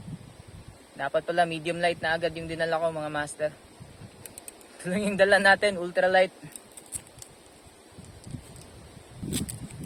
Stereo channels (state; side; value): identical; both; correlation 1.00